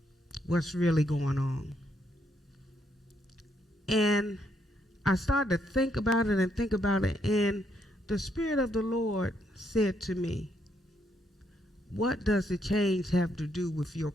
What's really going on? And I started to think about it, and the Spirit of the Lord said to me, what does the change have to do with your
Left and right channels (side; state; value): both; normal; correlation 0.75